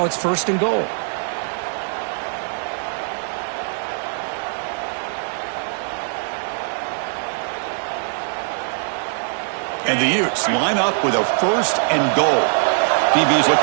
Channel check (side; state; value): left; silent; 63 dB below the other